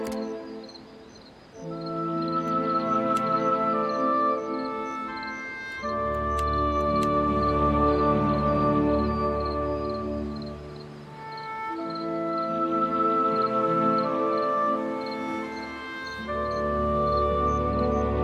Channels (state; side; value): identical; both; correlation 1.00